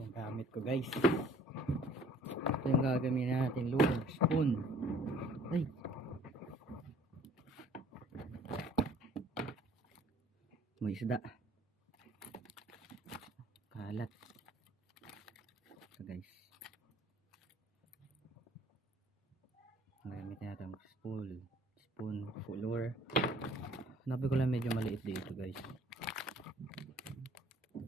gamit ko guys. Ito yung gagamitin natin. Lure, spoon. Ay. May isda. Kalat. Ito guys. Gagamitin natin spoon, lure. Hanabi ko lang medyo maliit dito guys.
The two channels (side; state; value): both; normal; correlation 0.54